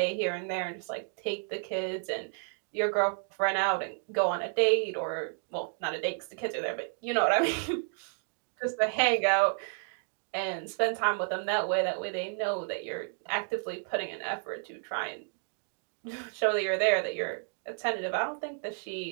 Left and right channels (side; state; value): left; silent; 57 dB below the other